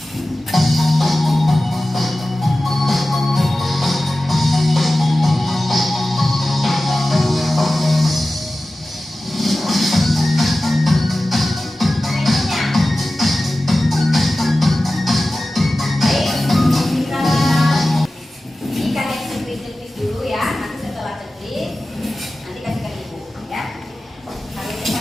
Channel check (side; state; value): both; normal; correlation 0.95